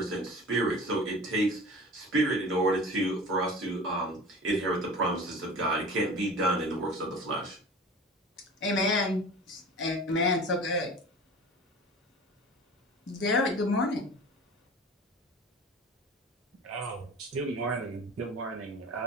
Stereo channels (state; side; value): normal; both; correlation 0.38